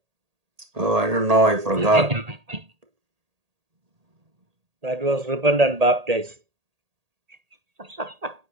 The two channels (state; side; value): late; left; 1.8 ms